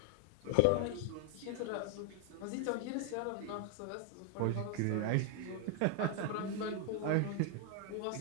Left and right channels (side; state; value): both; different; correlation 0.01